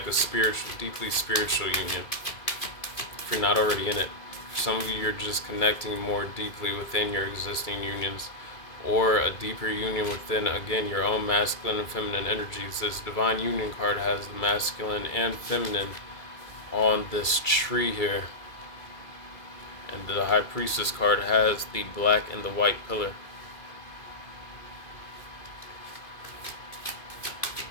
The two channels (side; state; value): right; late; 2.3 ms